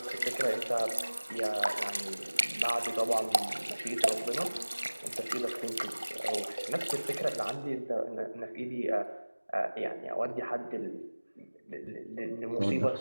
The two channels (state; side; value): inverted; both; correlation -1.00